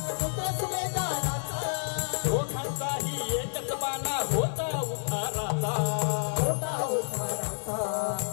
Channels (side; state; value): right; silent; 57 dB below the other